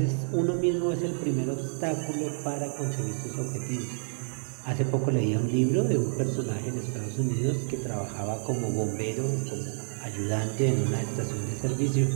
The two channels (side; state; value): left; silent; digital silence